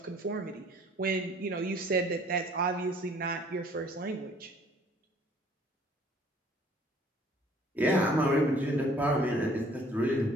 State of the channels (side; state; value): both; normal; correlation 0.56